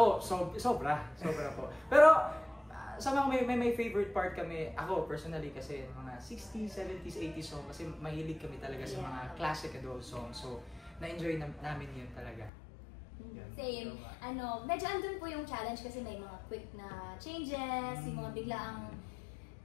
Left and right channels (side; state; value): right; drops out; at 12.5 s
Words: sobra po. Pero, sa mga may favorite part kami, ako personally kasi mga 60s, 70s, 80s song, kasi mahilig kami talaga sa mga classic adult songs. So, na-enjoy namin yun talaga. Yun. Same. Medyo andun po yung challenge kasi may mga quick na changes, yung mga biglaang